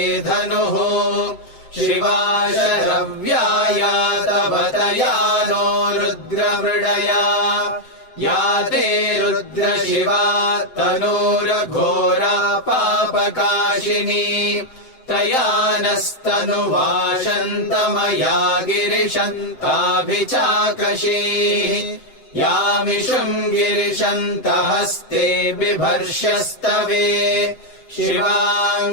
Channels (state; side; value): late; right; 7.8 ms